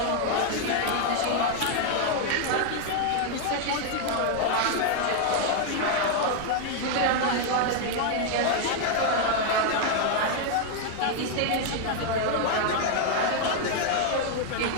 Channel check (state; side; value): different; both; correlation 0.00